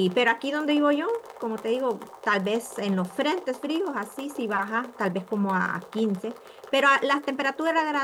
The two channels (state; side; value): identical; both; correlation 1.00